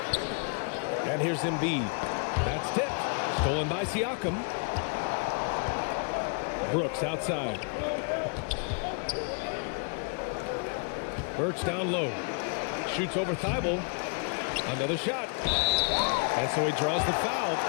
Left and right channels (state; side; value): quieter; right; 39.4 dB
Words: And here's Embiid. That's tipped. Stolen by Siakam. Brooks outside. Birch down low. Shoots over Thibault. Another shot. And so he draws the foul.